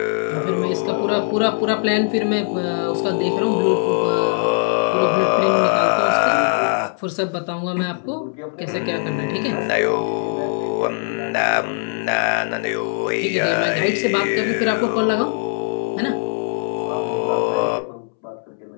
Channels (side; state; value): right; silent; 65 dB below the other